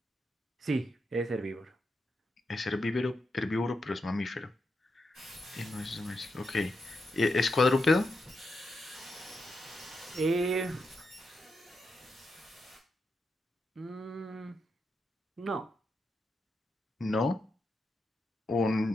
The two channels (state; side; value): normal; both; correlation 0.85